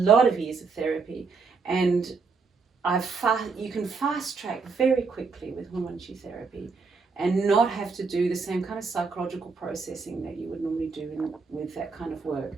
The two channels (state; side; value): quieter; left; 4.7 dB